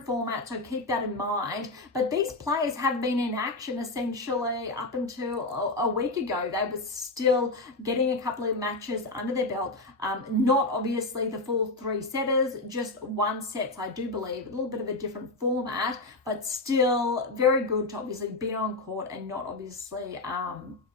format, so keep that in mind. But these players have been in action essentially up until a week ago. They were still getting a couple of matches under their belt. Not obviously the full 3 setters, just 1 sets, I do believe. A little bit of a different format, but still very good to obviously be on court and not obviously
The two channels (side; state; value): right; quieter; 3.1 dB